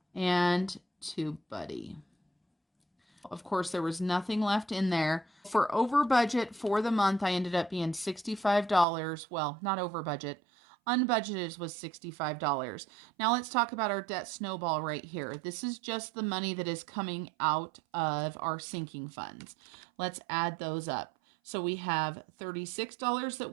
and Tube Buddy. Of course, there was nothing left in there. For over budget for the month, I ended up being $65. Well, not over budget. Unbudgeted was $65. Now let's talk about our debt snowball right here. This is just the money that is coming out of our sinking funds. Let's add those up. So we have $36 that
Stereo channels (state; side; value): drops out; left; at 8.8 s